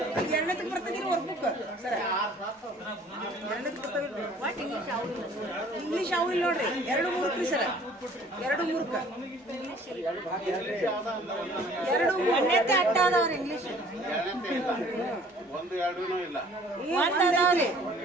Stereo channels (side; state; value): both; normal; correlation 0.53